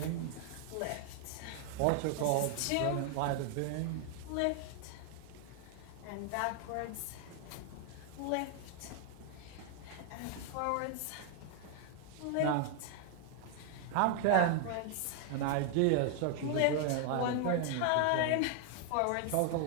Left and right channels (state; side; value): different; both; correlation 0.00